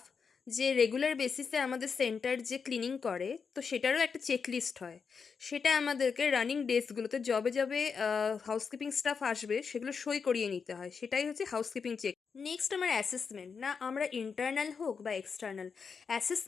যে রেগুলার বেসিসে আমাদের সেন্টার যে ক্লিনিং করে, তো সেটারও একটা চেকলিস্ট হয়। সেটা আমাদেরকে রানিং ডেজগুলোতে যবে যবে হাউসকিপিং স্টাফ আসবে সেগুলো সই করিয়ে নিতে হয়, সেটাই হচ্ছে হাউসকিপিং চেক। নেক্সট আমার অ্যাসেসমেন্ট, না আমরা ইন্টারনাল হোক বা এক্সটার্নাল,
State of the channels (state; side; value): quieter; right; 5.7 dB